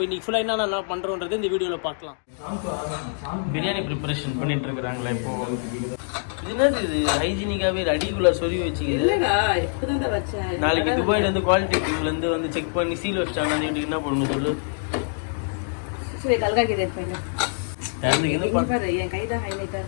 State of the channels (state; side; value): silent; right; digital silence